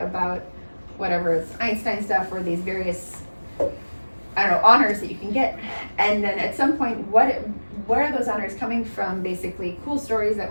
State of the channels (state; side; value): inverted; both; correlation -1.00